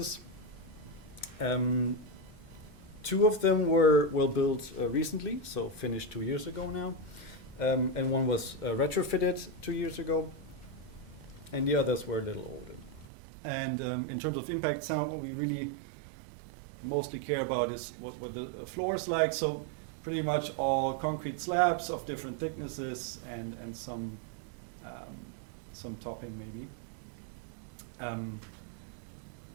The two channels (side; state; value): left; drops out; at 13.1 s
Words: 2 of them were built recently, so finished 2 years ago now, and one was retrofitted 2 years ago, and the others were a little older. And in terms of impact sound, what we really mostly care about is what the floors like. So pretty much all concrete slabs of different thicknesses, and some topping maybe.